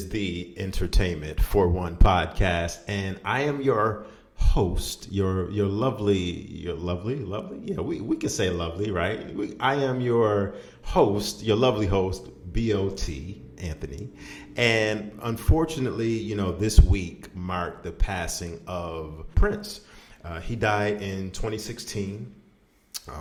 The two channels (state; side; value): identical; both; correlation 1.00